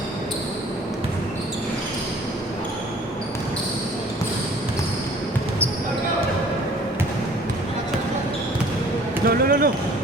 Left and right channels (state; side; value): normal; both; correlation 0.52